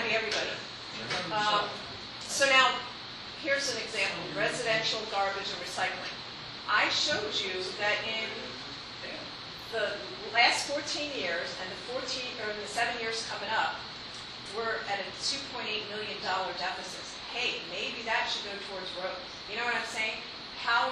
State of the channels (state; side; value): identical; both; correlation 1.00